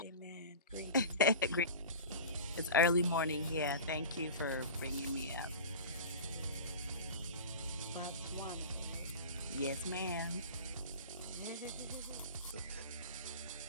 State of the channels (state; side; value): inverted; both; correlation -0.32